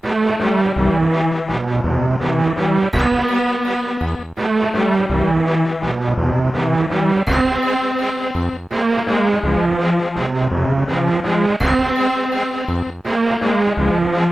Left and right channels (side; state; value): both; normal; correlation 0.95